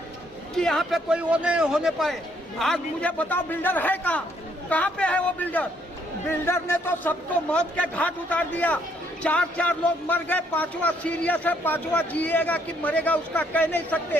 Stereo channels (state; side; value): normal; both; correlation 0.69